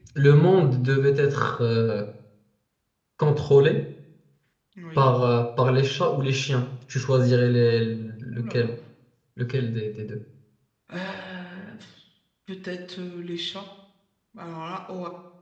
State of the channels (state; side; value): identical; both; correlation 1.00